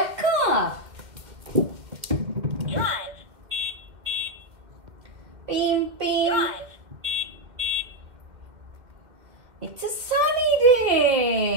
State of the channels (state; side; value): late; left; 2.2 ms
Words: car. Drive. Beep, beep. Drive. It's a sunny